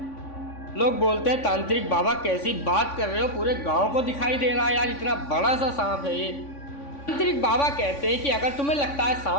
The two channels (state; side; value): late; right; 3.5 ms